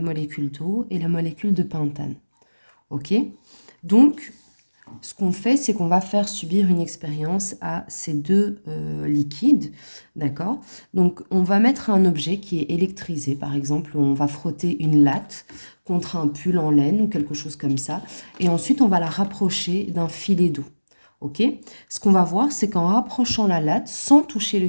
molécule d'eau et la molécule de pentane. Ok? Donc, ce qu'on fait, c'est qu'on va faire subir une expérience à ces deux liquides, d'accord? Donc, on va mettre un objet qui est électrisé, par exemple, on va frotter une latte contre un pull en laine ou quelque chose comme ça, et ensuite, on va la rapprocher d'un filet d'eau. Ok? Ce qu'on va voir, c'est qu'en rapprochant la latte, sans toucher le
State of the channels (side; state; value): both; inverted; correlation -1.00